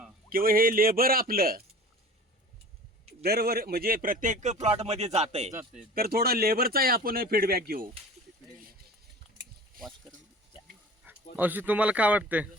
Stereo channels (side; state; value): both; normal; correlation 0.40